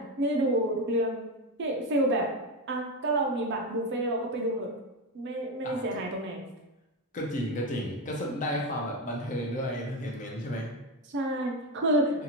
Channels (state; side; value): normal; both; correlation 0.14